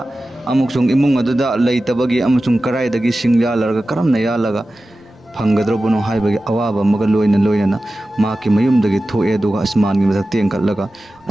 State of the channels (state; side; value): normal; both; correlation 0.95